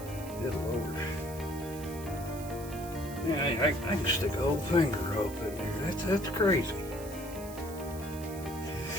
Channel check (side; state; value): right; noise; hiss, 15 dB below the sound